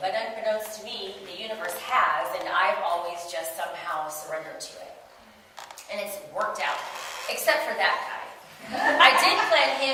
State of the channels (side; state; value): both; identical; correlation 1.00